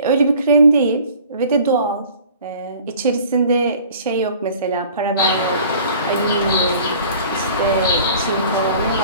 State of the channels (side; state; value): both; inverted; correlation -0.48